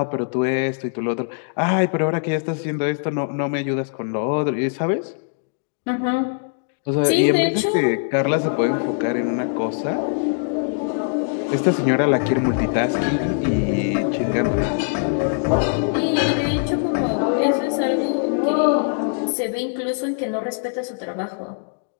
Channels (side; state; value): right; silent; digital silence